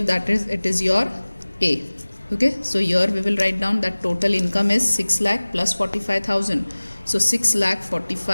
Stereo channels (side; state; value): both; inverted; correlation -1.00